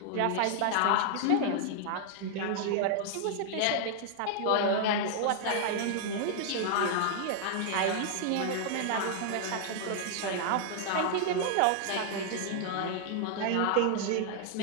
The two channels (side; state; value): both; different; correlation -0.01